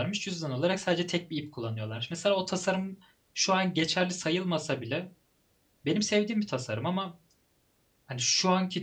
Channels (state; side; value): identical; both; correlation 1.00